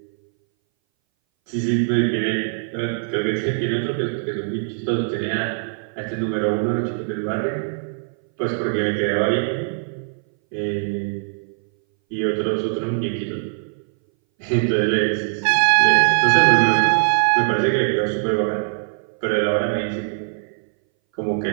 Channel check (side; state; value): left; silent; 61 dB below the other